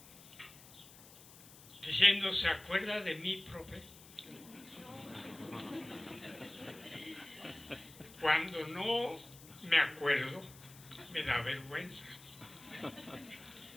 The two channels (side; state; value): left; noise; hiss, 19 dB below the sound